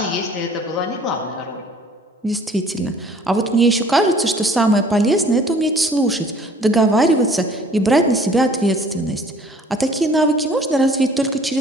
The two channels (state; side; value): normal; both; correlation 0.54